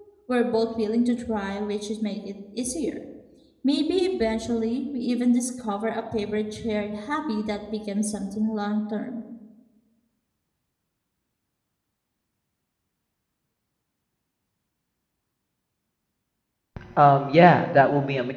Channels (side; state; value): both; identical; correlation 1.00